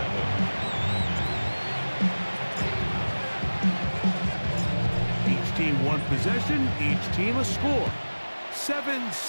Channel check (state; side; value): inverted; both; correlation -1.00